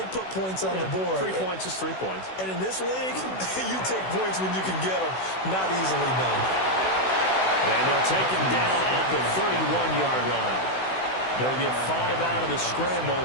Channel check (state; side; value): late; right; 16 ms